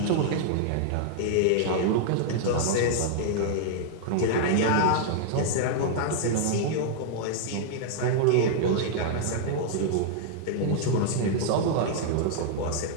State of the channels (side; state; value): both; different; correlation -0.01